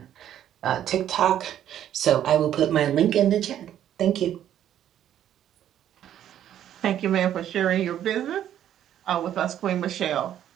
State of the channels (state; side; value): quieter; left; 10.9 dB